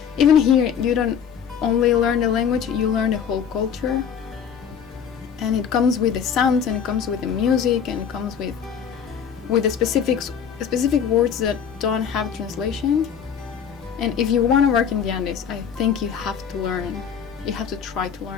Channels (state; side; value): quieter; right; 7.7 dB